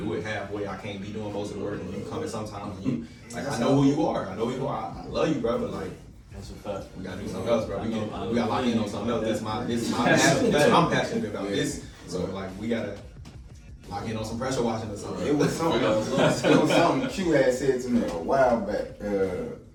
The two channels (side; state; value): both; identical; correlation 1.00